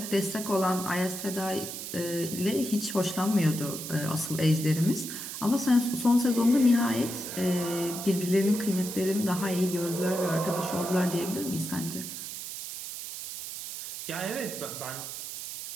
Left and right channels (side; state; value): right; noise; hiss, 8 dB below the sound